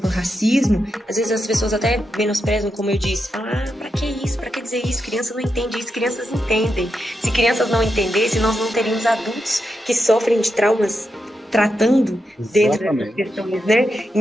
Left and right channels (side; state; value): both; normal; correlation 0.86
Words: racismo. Às vezes as pessoas até menosprezam, como eu disse, falam, pra que isso, pra que dizer isso, criança não entende isso, crianças entendem. Se crianças não entendessem, nós não teríamos adultos que sofrem de traumas tratando dentro dessas questões, né?